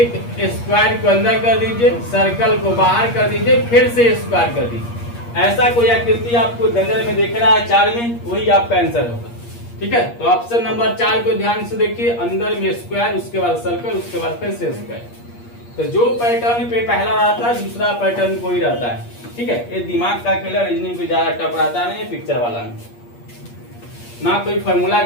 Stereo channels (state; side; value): late; right; 8.5 ms